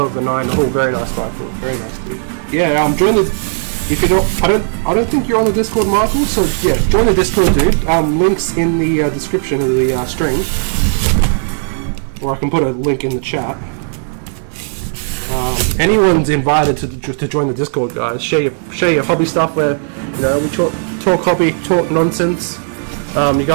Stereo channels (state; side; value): silent; left; digital silence